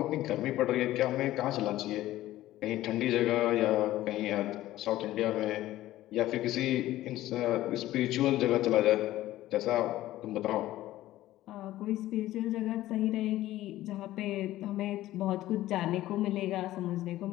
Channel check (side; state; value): right; quieter; 15.2 dB